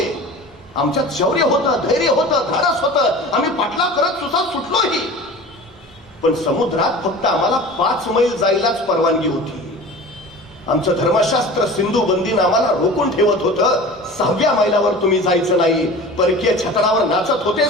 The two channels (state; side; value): normal; both; correlation 0.38